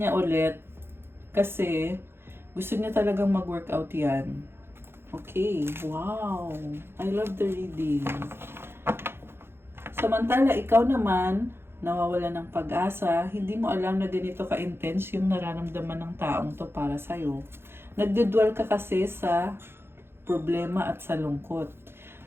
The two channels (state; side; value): late; left; 0.11 ms